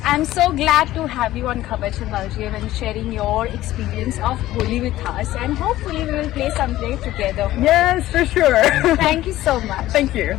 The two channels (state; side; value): quieter; right; 15.2 dB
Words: I'm so glad to have you on Khabar Se Belgium and sharing your experience of Holi with us, and hopefully we will play someday together. Yes, for sure. Thank you so much. Thank